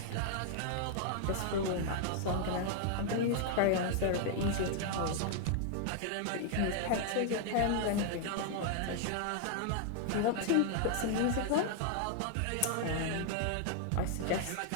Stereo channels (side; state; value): both; different; correlation 0.00